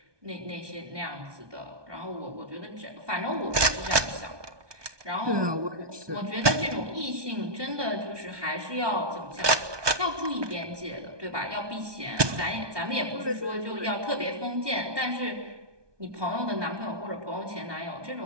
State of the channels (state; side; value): late; left; 1.2 ms